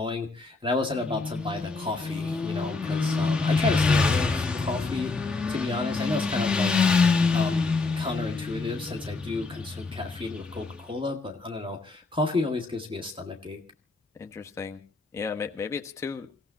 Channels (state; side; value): quieter; right; 3.7 dB